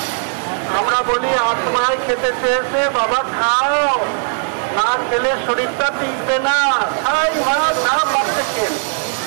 আমরা বলি আত্মায় খেতে চেয়েছে, বাবা খাও, না খেলে শরীরটা টিকবে না। খাই ভাত, যা পাচ্ছে খেয়ে,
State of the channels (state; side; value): silent; left; digital silence